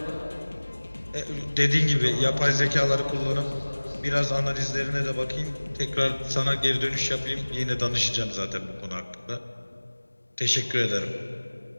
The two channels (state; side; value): inverted; both; correlation -1.00